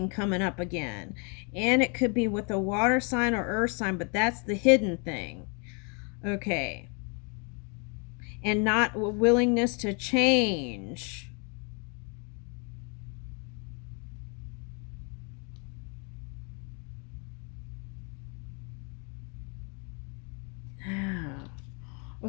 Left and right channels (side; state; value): right; quieter; 36.2 dB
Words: coming up again. And it could be with a water sign or earth sign, but that's the hidden thing. Okay. And not willingness to change.